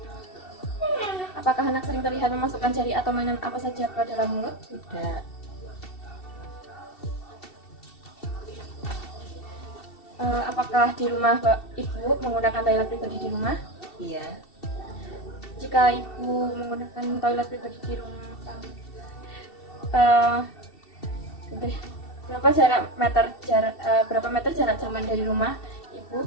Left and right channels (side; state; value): right; late; 2.7 ms